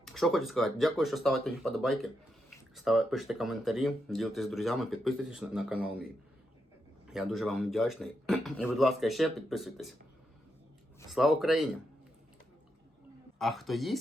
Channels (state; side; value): normal; both; correlation 0.83